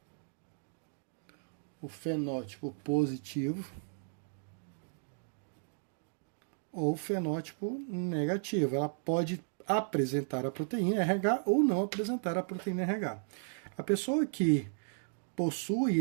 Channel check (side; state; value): left; silent; digital silence